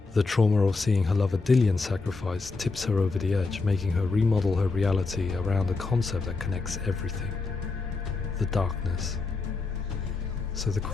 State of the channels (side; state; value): right; quieter; 3.9 dB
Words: The trauma of seeing her lover Dillian sacrificed tips her over the edge, making her remodel her reality around a concept that connects everything: the darkness. So the